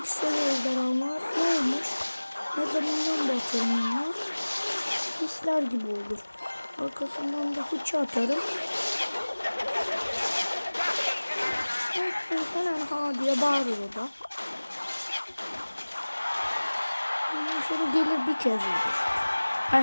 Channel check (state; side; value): inverted; both; correlation -1.00